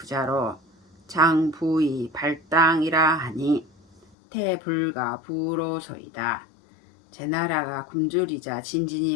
장부의 발당이라 하니 태불가 부로소이다. 제 나라가 굶주리자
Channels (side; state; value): right; drops out; at 4.0 s